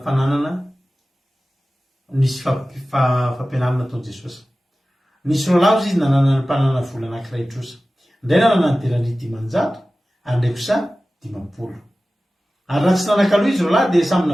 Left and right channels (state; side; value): normal; both; correlation 0.96